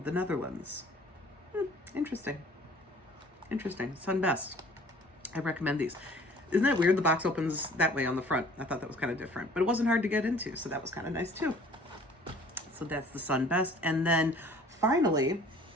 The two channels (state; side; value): normal; both; correlation 0.51